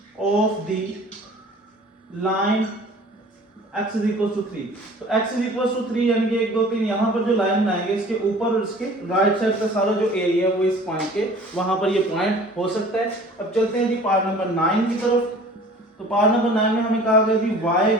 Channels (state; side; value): normal; both; correlation 0.47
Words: of the line x is equal to 3। तो x इज इक्वल टू 3 यानी कि 1 2 3 यहाँ पर जो लाइन बनाएंगे इसके ऊपर और इसके राइट साइड का सारा जो एरिया है वो इस पॉइंट के वहां पर ये पॉइंट हो सकता है। अब चलते हैं जी पार्ट नंबर 9 की तरफ। तो पार्ट नंबर 9 में हमें कहा गया जी y